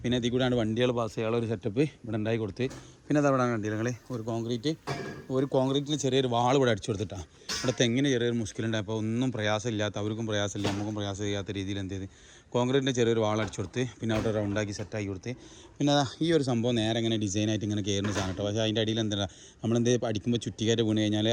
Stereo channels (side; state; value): both; identical; correlation 1.00